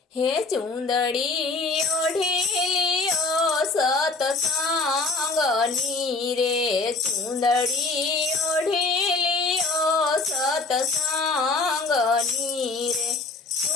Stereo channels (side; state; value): right; quieter; 3.7 dB